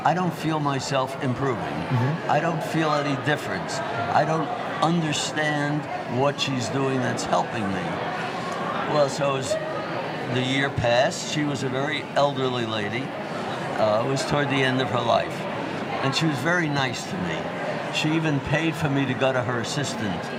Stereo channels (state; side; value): identical; both; correlation 1.00